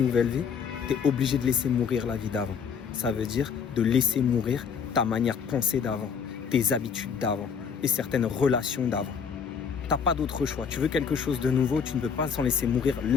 vie, tu es obligé de laisser mourir la vie d'avant. Ça veut dire de laisser mourir ta manière de penser d'avant, tes habitudes d'avant et certaines relations d'avant. Tu n'as pas d'autre choix. Tu veux quelque chose de nouveau, tu ne veux pas sans laisser mourir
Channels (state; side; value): quieter; right; 6.6 dB